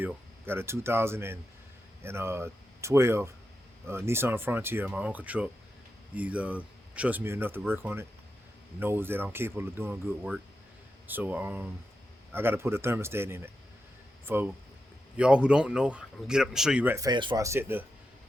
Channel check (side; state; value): both; normal; correlation 0.88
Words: Got a 2012 Nissan Frontier, my uncle truck. He trusts me enough to work on it. Knows that I'm capable of doing good work. So I got to put a thermostat in it. For y'all who don't know, I'm gonna get up and show you right fast before I set the